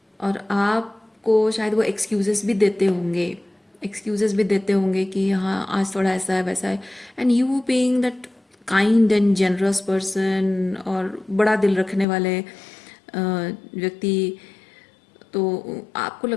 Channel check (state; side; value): drops out; right; at 12.1 s